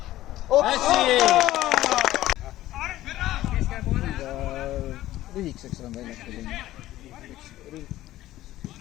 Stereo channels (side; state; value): right; quieter; 15.0 dB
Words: Lühikeseks olen väljakul.